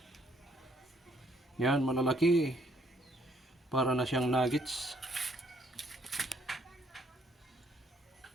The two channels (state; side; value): normal; both; correlation 0.68